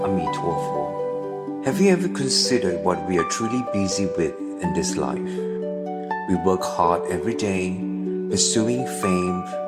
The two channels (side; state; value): both; identical; correlation 1.00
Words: Amituofo. Have you ever considered what we are truly busy with in this life? We work hard every day, pursuing fame,